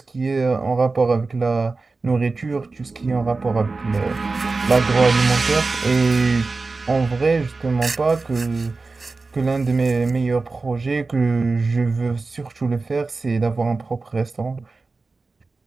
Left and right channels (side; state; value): left; quieter; 3.8 dB